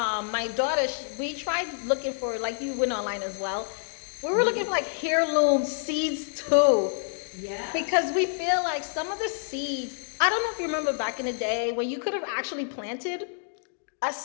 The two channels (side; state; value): right; silent; digital silence